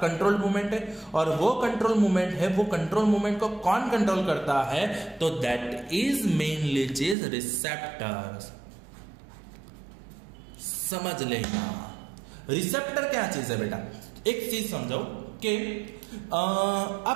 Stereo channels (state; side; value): drops out; left; at 7.2 s